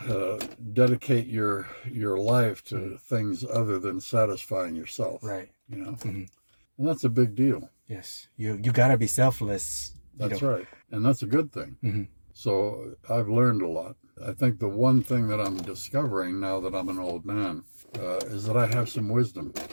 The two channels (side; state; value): both; inverted; correlation -1.00